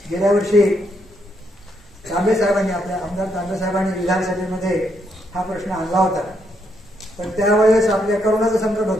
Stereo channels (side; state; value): both; normal; correlation 0.76